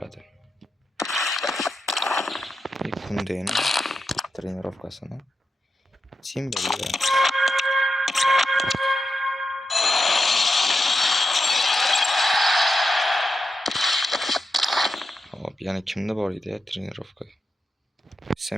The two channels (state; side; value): normal; both; correlation 0.88